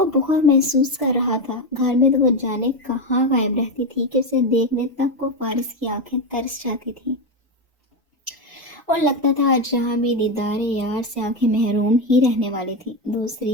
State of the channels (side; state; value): both; normal; correlation 0.11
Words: بہت محسوس کر رہا تھا۔ گھر میں تو وہ جانے کہاں غائب رہتی تھی کہ اسے دیکھنے تک کو فارس کی آنکھیں ترس جاتی تھیں، اور لگتا تھا آج جہاں بھی دیدار یار سے آنکھیں محروم ہی رہنے والی تھی۔